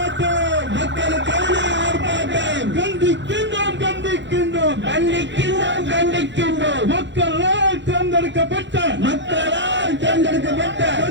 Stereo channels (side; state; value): left; late; 0.53 ms